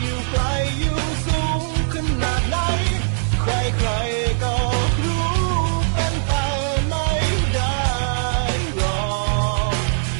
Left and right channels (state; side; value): silent; left; digital silence